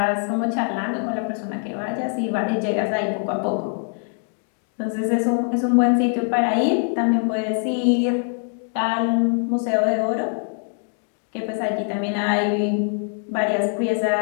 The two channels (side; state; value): right; silent; 55 dB below the other